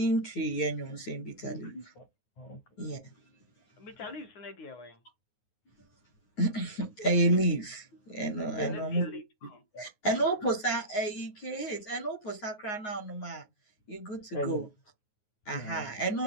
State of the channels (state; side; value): late; right; 9.5 ms